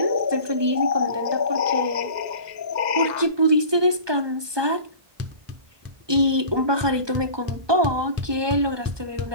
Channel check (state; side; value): late; left; 1.2 ms